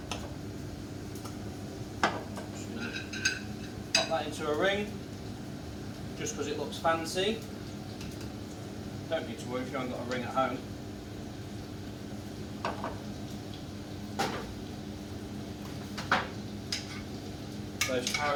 Just going to pop that into a ring, just because it looks fancy. Don't need to worry if you haven't got a ring at home. Those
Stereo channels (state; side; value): identical; both; correlation 1.00